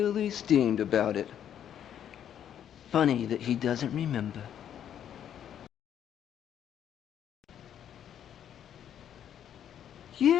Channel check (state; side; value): quieter; right; 9.7 dB